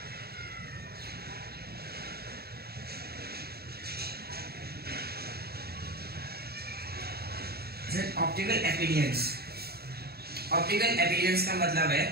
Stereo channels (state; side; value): late; left; 0.46 ms